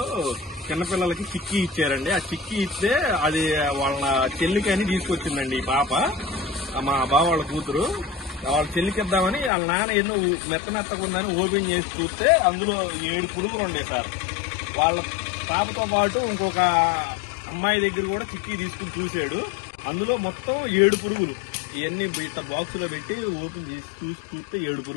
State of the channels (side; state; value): right; drops out; at 9.5 s